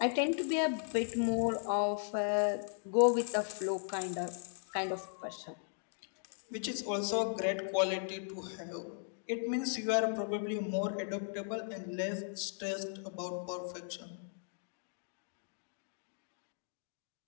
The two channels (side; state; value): right; silent; digital silence